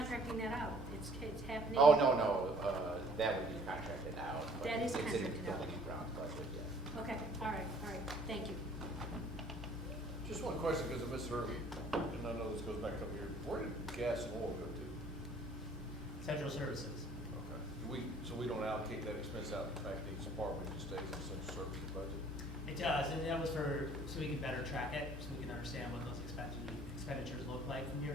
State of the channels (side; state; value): both; normal; correlation 0.55